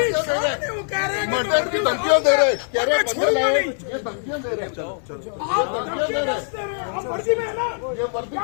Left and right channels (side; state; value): right; silent; digital silence